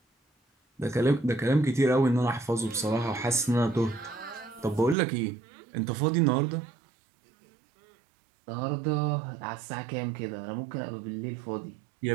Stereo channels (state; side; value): drops out; left; at 5.0 s